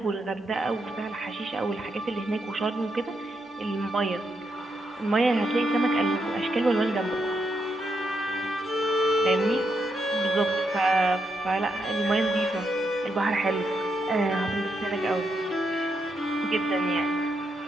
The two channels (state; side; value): normal; both; correlation 0.81